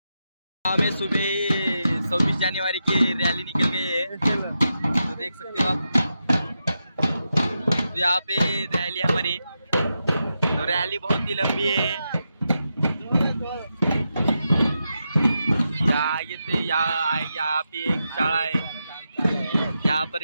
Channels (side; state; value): both; inverted; correlation -0.87